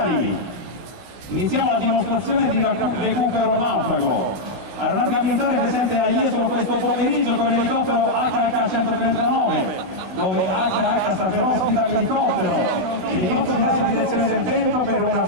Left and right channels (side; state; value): left; late; 16 ms